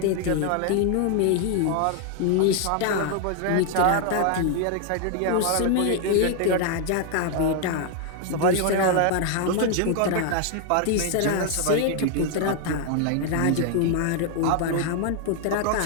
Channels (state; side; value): different; both; correlation 0.00